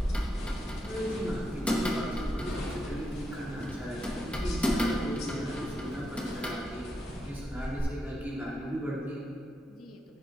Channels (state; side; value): normal; both; correlation 0.84